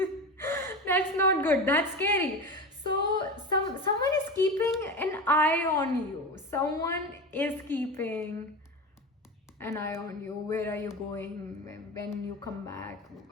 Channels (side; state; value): both; normal; correlation 0.25